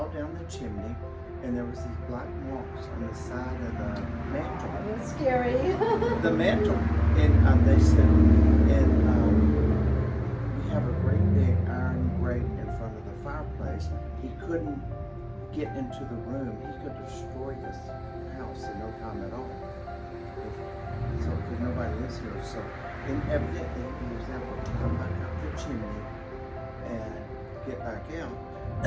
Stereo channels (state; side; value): identical; both; correlation 1.00